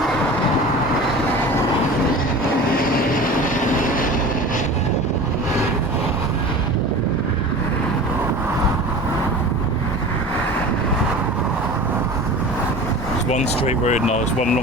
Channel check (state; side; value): normal; both; correlation 0.36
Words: It's one straight road now, it's one